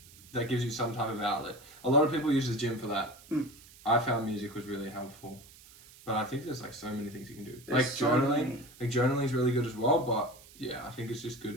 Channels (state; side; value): noise; right; hiss, 22 dB below the sound